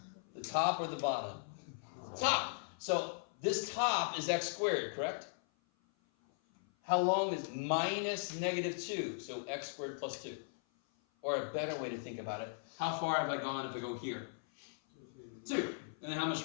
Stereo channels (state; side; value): silent; right; 52 dB below the other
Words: The top or the bottom? Top. So this top is x squared, correct? How long is minus -2? So x squared plus 2. Or a better way to think about it, how far have I gone if I go here? 2. And then how much